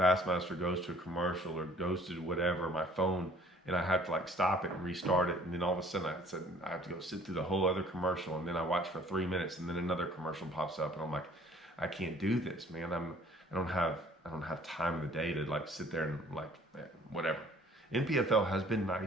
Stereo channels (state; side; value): normal; both; correlation 0.55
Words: goes to a commercial or goes to whatever, my phone, and I have to like stop it and restart it, and then all of a sudden I have to go sit through the whole other commercial, and then I watch for 3 minutes, and then another commercial pops up, and I'm like, I can't do this, man. I don't have time of the day to like sit there and like whatever. NPFL has been